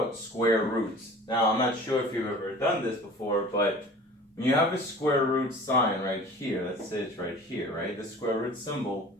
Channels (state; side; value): normal; both; correlation 0.43